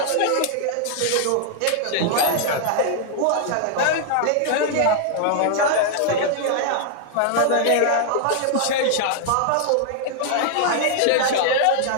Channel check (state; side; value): different; both; correlation 0.00